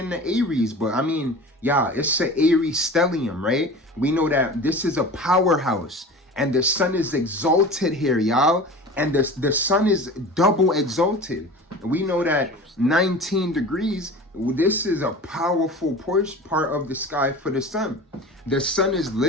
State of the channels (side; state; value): both; normal; correlation 0.36